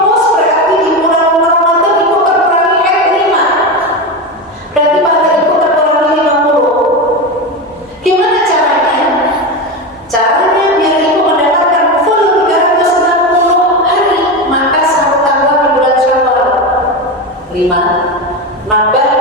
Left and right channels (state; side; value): normal; both; correlation 0.18